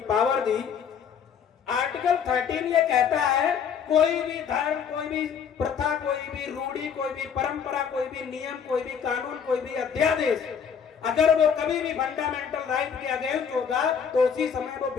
पावर दी, आर्टिकल 13 ये कहता है कोई भी धर्म, कोई भी प्रथा, कोई भी रूढ़ी, कोई भी परंपरा, कोई भी नियम, कोई भी कानून, कोई भी अध्यादेश अगर वो कभी भी फंडामेंटल राइट के अगेंस्ट होगा तो उसी समय वो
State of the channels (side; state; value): right; quieter; 7.2 dB